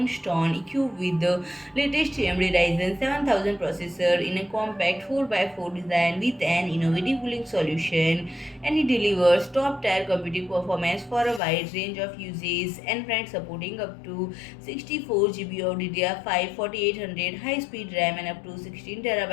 equipped with the latest AMD Ryzen 7000 processor in a compact 4x4 design with an innovative cooling solution, and it delivers top-tier computing performance for a wide range of uses, and friends, supporting up to 64 GB of DDR5-4800 high-speed RAM and up to 16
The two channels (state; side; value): drops out; right; at 11.4 s